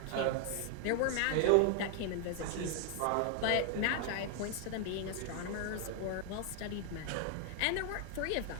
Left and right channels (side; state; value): both; different; correlation 0.00